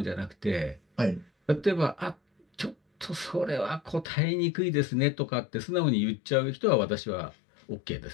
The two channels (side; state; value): right; drops out; at 4.0 s